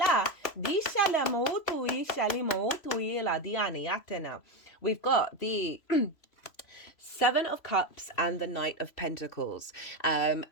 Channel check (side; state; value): right; late; 3.0 ms